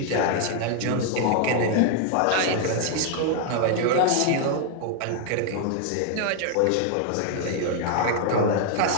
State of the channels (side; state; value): both; different; correlation 0.00